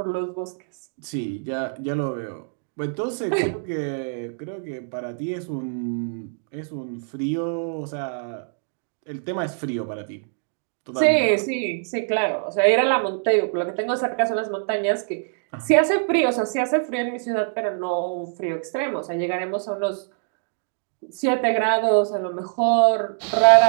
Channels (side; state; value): left; silent; digital silence